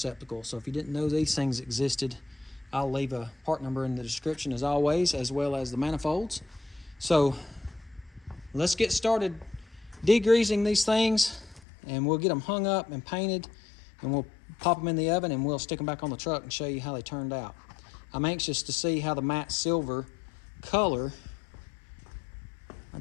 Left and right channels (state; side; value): drops out; right; at 11.6 s